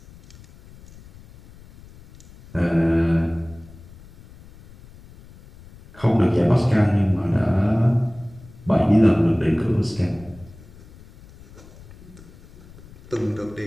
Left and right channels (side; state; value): left; noise; rumble, 21 dB below the sound